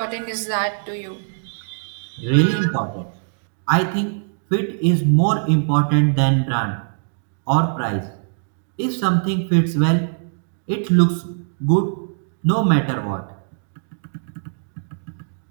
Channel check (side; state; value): left; silent; digital silence